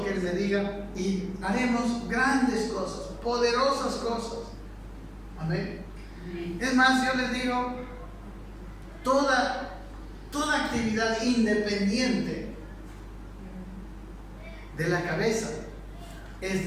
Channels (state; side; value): identical; both; correlation 1.00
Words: que Él me diga y haremos grandes cosas, poderosas cosas. Amén. Es más, yo les digo, toda actividad independiente de la cabeza es